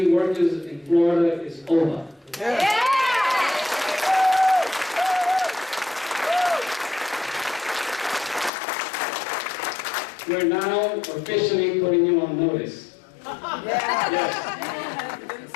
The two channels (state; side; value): drops out; right; at 8.5 s